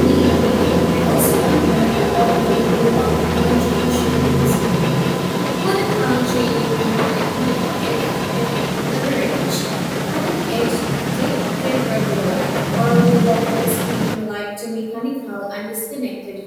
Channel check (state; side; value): identical; both; correlation 1.00